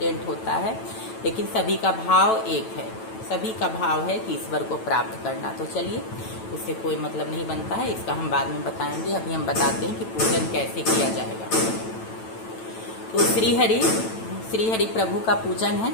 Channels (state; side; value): late; right; 9.0 ms